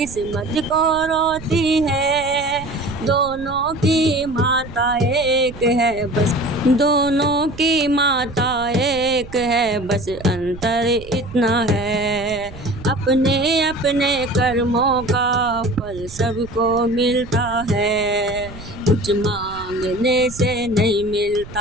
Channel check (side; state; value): right; noise; rumble, 16 dB below the sound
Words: को रोती है। दोनों की माता एक है बस, दोनों की माता एक है बस, अंतर इतना है। अपने अपने कर्मों का फल सबको मिलता है, कुछ मांगने से नहीं